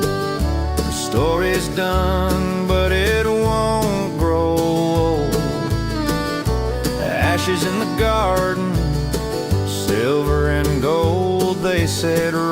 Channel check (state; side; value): identical; both; correlation 1.00